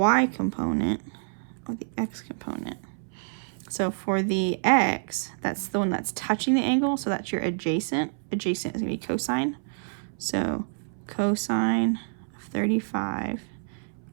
component or the x component, so for the x, that's the one that's touching the angle. So that's your adjacent. Adjacent is going to be cosine. So cosine of 35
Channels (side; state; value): left; silent; 60 dB below the other